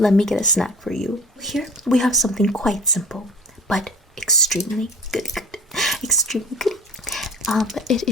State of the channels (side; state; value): both; normal; correlation 0.41